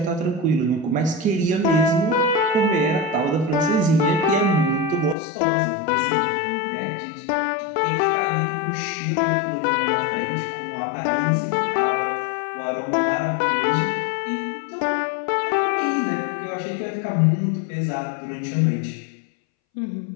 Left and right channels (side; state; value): right; drops out; at 5.2 s